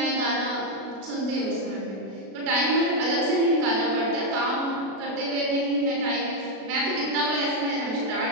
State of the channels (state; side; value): late; left; 36 ms